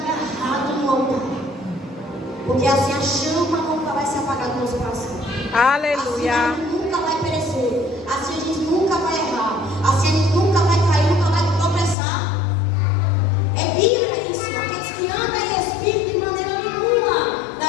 no altar. Porque assim a chama nunca vai se apagar do nosso coração. Aleluia. Assim a gente nunca vai perecer. Assim a gente nunca vai errar. Assim a gente nunca vai cair, nunca vai tropeçar. É Bíblia isso. Aqueles que andam em espírito de maneira nenhuma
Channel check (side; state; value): right; drops out; at 12.0 s